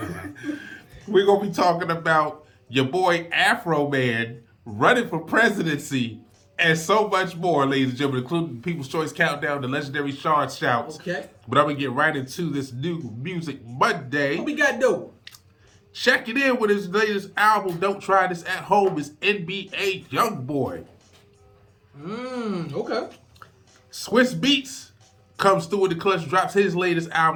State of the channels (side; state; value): both; identical; correlation 1.00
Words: We're gonna be talking about your boy Afro Man running for presidency. And so much more, ladies and gentlemen, including People's Choice Countdown, the legendary Sean Shouts. Okay. But I'm going to get right into this new Music Monday. What we got though? Checking in with his latest album, Don't Try This at Home, is NBA Youngboy. Okay. Swiss Beats comes through with the clutch, drops his latest